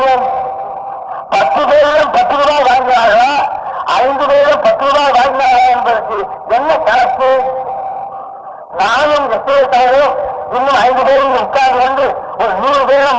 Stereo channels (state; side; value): identical; both; correlation 1.00